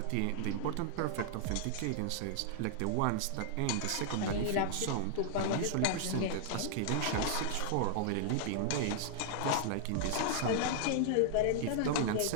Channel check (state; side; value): different; both; correlation -0.01